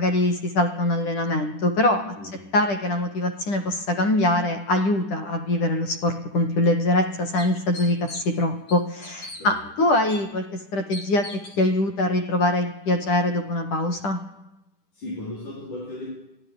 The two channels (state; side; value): late; right; 10 ms